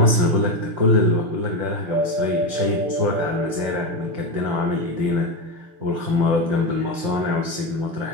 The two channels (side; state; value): left; late; 5.8 ms